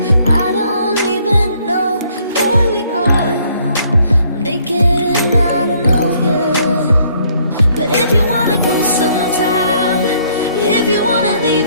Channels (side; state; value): both; inverted; correlation -0.65